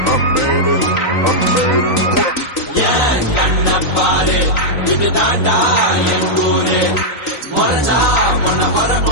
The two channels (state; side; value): late; right; 3.9 ms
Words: I made it, I made it. ஏன் கண்ண பாரு இதுதான்டா என் ஊரு. முறைச்சா உன்னை